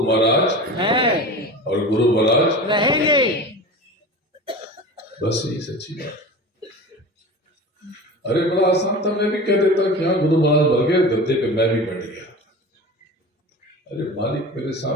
महाराज हैं और गुरु महाराज रहेंगे। बस यही सच्ची बात। अरे बड़ा आसान था, मैं भी कह देता कि हाँ गुरु महाराज मर गए, गद्दे पे मैं भी बैठ गया। अरे मालिक मेरे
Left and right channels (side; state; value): both; normal; correlation 0.33